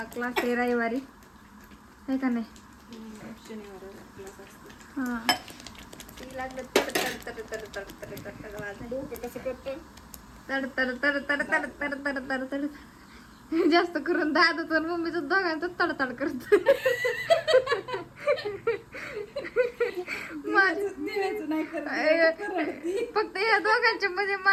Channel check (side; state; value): both; identical; correlation 1.00